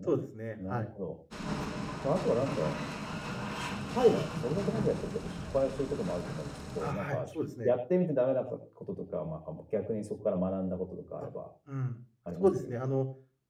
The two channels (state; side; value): identical; both; correlation 1.00